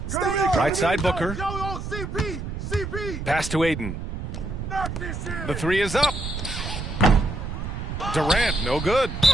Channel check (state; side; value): noise; right; rumble, 6 dB below the sound